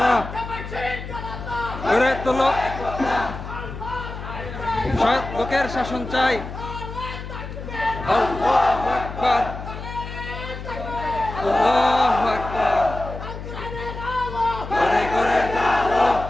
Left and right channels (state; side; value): noise; left; hum, 9 dB below the sound